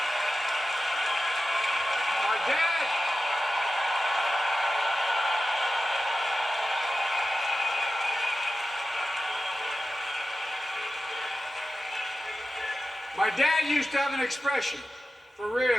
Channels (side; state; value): both; normal; correlation 0.93